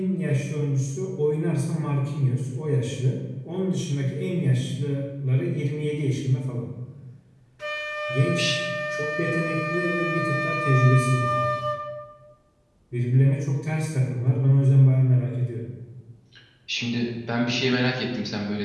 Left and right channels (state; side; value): identical; both; correlation 1.00